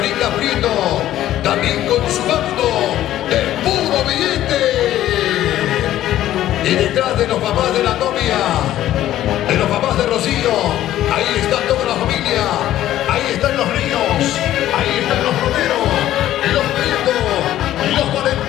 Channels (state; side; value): quieter; right; 13.1 dB